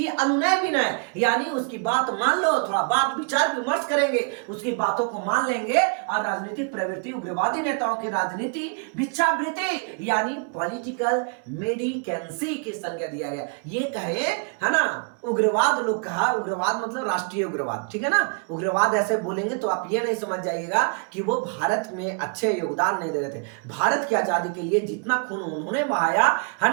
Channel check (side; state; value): left; quieter; 37.3 dB